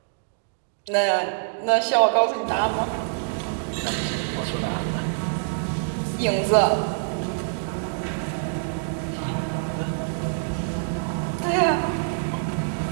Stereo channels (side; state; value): left; silent; digital silence